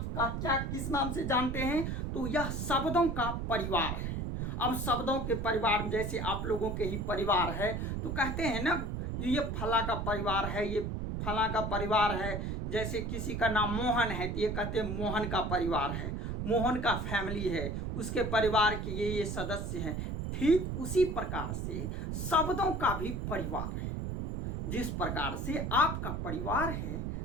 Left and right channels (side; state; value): right; noise; rumble, 3 dB below the sound